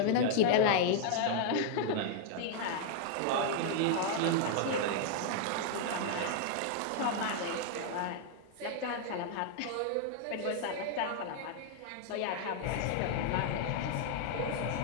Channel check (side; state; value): both; different; correlation -0.01